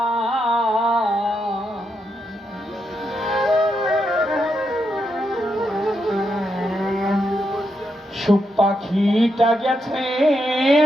সুখ পাখিটা গেছে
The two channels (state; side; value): normal; both; correlation 0.82